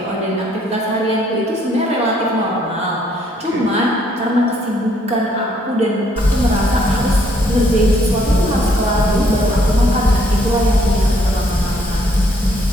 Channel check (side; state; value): both; normal; correlation 0.67